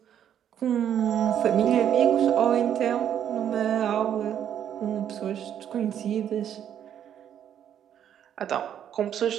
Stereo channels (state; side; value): quieter; left; 9.7 dB